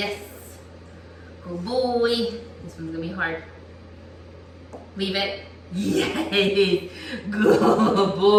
Good boy. This one's gonna be hard. Leave it. Yes. Good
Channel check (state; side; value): identical; both; correlation 1.00